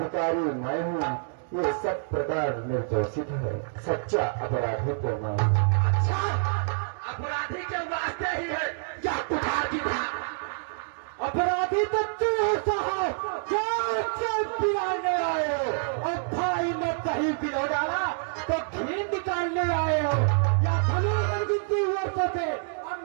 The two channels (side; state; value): left; silent; digital silence